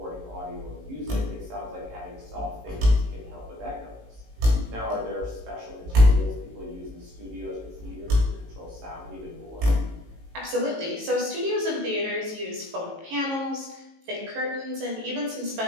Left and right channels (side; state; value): left; late; 18 ms